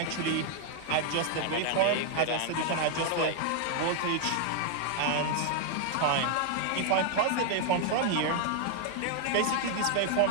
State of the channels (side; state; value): both; different; correlation 0.00